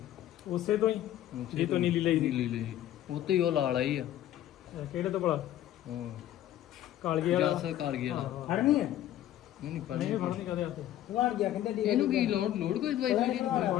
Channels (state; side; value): quieter; right; 12.7 dB